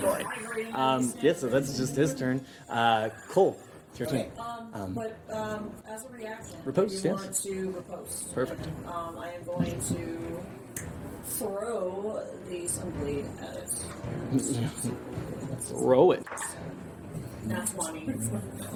Yeah, so that's just his turn. Cole, it's your turn. But as a reaction, Riposte, if you yes. want to riposte. Perfect. I am going to throw the sunblade at it. Throw it. Not 20.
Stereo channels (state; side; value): identical; both; correlation 1.00